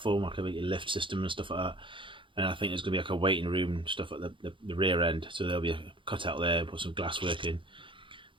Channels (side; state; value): left; late; 0.24 ms